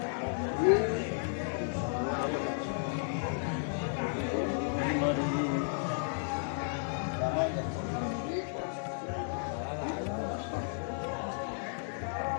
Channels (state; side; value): silent; right; digital silence